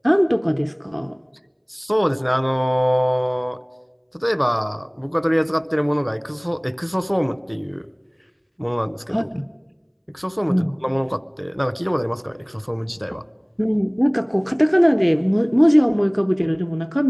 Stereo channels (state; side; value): identical; both; correlation 1.00